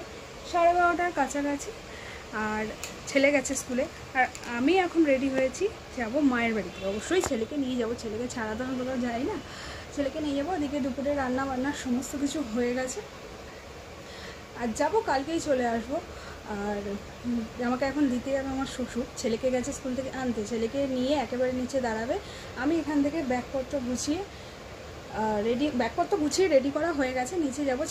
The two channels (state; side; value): identical; both; correlation 1.00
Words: সাড়ে 12টার কাছাকাছি। আর ছেলে গেছে স্কুলে, আর আমি এখন রেডি হয়েছি, যাব মায়ের বাড়িতে। অবশ্যই ছেলেকে নিয়ে যাব, ছেলেকে ছাড়া তো আমি কোথাও যাই না, ছেলেকে নিয়ে যাবো। ওদিকে দুপুরে রান্না বান্না সমস্ত কিছু হয়ে গেছে, আর যাবো, কালকেই চলে আসবো। আর আমাকে এখন দিতে যাবে আমার শ্বশুর, ছেলেকে গেছে স্কুল থেকে আনতে, ছেলেকে নিয়ে একেবারে নিচে দাঁড়াবে। আমি এখান থেকে ব্যাগপত্র গুছিয়ে রেডি করা হয়ে গেছে, নিচে যাব,